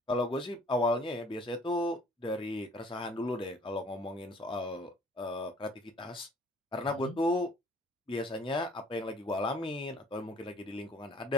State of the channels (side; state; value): both; normal; correlation 0.55